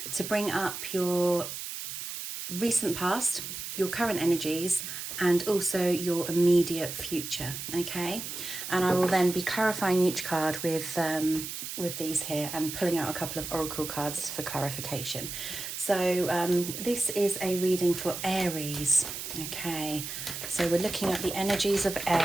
to bring up your recent past, your current energies, and also your immediate future, okay? And I will then be clarifying each card with these here and pulling out a couple of oracle cards for clarification. So this is a reading for Aries, okay? So we're looking at the energies of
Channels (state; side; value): noise; right; hiss, 7 dB below the sound